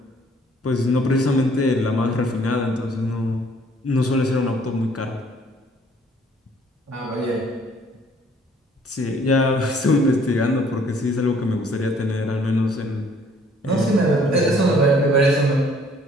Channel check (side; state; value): both; normal; correlation 0.60